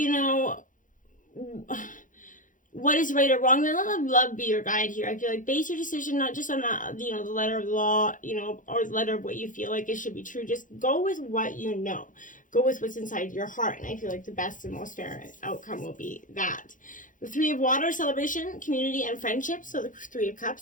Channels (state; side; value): late; right; 0.38 ms